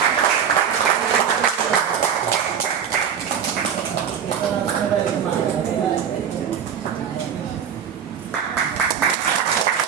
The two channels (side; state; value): left; quieter; 8.0 dB